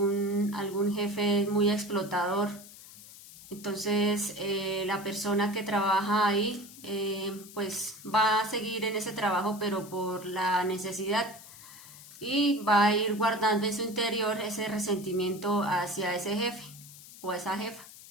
jefe es muy explotador. Entonces la persona que trabaja ahí pues va a seguir en ese trabajo, pero por la necesidad, y va a ir guardando en su interior ese resentimiento hacia ese jefe o esa jefa.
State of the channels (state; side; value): noise; left; hiss, 18 dB below the sound